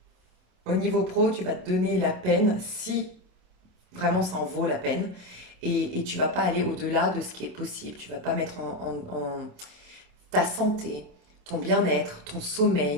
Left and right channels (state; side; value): late; left; 27 ms